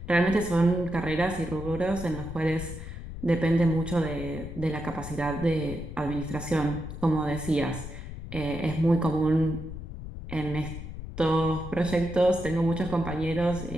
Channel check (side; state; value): left; noise; rumble, 10 dB below the sound